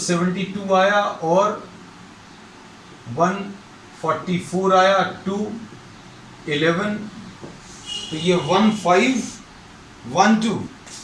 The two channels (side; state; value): both; identical; correlation 1.00